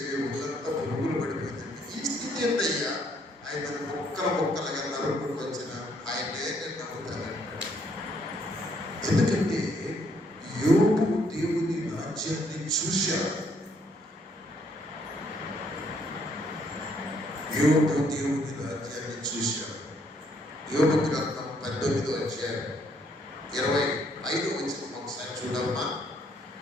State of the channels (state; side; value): normal; both; correlation 0.69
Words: ఒళ్ళంతా పురుగులు పడిపోతుంది. ఈ స్థితి ఏంటయ్యా? ఆయన ముక్కలుగా నరుకుంటూ వచ్చిన ఆయనే నేను నమ్ముతానంటాడు. ఎందుకంటే యోబు దేవుని రాజ్యాన్ని చూశాడు. యోబు దేవుని రాజ్యాన్ని చూశాడు. యోబు గ్రంథం 18వ అధ్యాయం 25వ వచనం ఒకసారి చూడమ్మా.